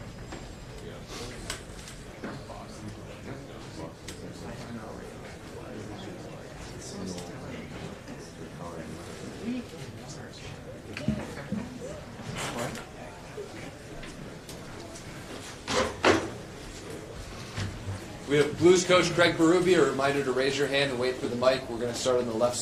We have Blues coach Craig Berube. A reminder to raise your hand and wait for the mic. We're going to start on the left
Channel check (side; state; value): both; identical; correlation 1.00